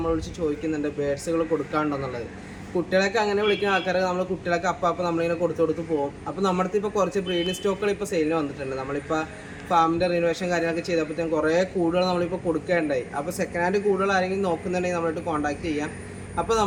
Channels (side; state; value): both; identical; correlation 1.00